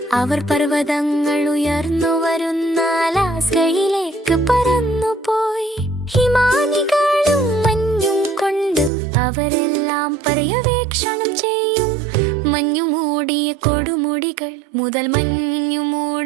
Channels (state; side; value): drops out; left; at 8.9 s